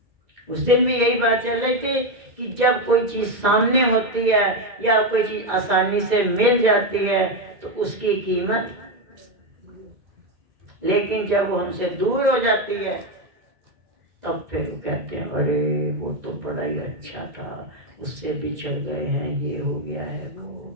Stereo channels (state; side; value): late; left; 2.3 ms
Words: उस दिन भी यही बात चल रही थी कि जब कोई चीज सामने होती है या कोई चीज आसानी से मिल जाती है तो उसकी कीमत, लेकिन जब वो हमसे दूर हो जाती है तब फिर वो कहते हैं अरे वो तो बड़ा ही अच्छा था, उससे बिछड़ गए हैं, ये हो गया है, वो हो